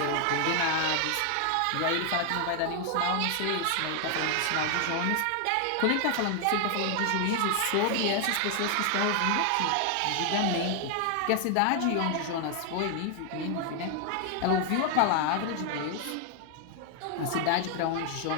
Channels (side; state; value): both; different; correlation 0.00